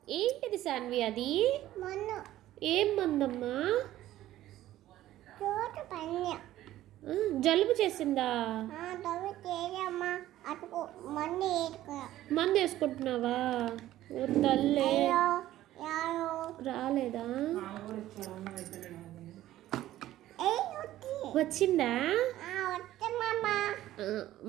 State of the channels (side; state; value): left; quieter; 14.1 dB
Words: ఏంటిది సాన్వి అది? మన్ను ఏం మందమ్మా? చోటు పన్య జలుబు చేసిందా? తవ్వి తేజమ్మా అటుకు మందు వేసుకో. మందు వేసుకుంటున్నావా? ఓ తల్లే, యారు రాలేదా? వచ్చి వచ్చిందా? వచ్చమ్మా.